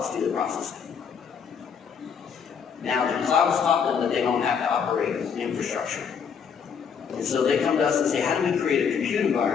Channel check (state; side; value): quieter; right; 6.8 dB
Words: do the processing. Now, the cloud's taught them that they don't have to operate infrastructure. And so they come to us and say, how do we create a compute